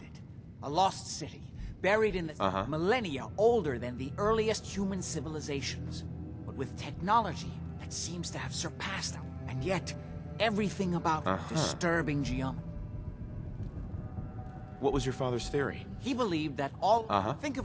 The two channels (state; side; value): identical; both; correlation 1.00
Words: it. A lost city, buried in the millennia older than the earliest human civilizations. But with technology that seems to have surpassed them. And yet, everything about disturbing geometry. What was your father's theory? He believed that all... Think